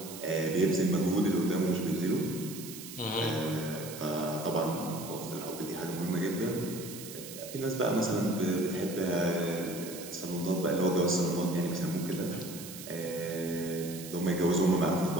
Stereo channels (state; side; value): noise; right; hiss, 12 dB below the sound